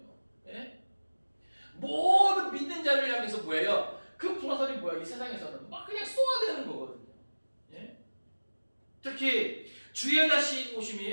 모든 믿는 자를 향해서 뭐예요? 그 불화살이 뭐야? 이 세상에서는 막 그냥 쏘아대는 거거든요. 특히 주의 다시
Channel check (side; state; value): both; inverted; correlation -1.00